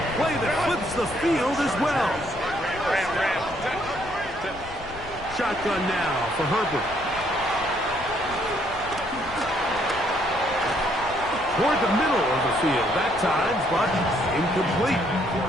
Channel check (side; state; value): left; noise; rumble, 16 dB below the sound